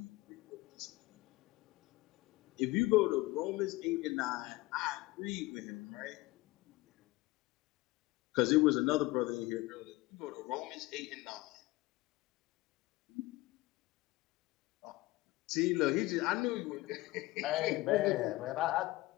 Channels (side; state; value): right; quieter; 19.9 dB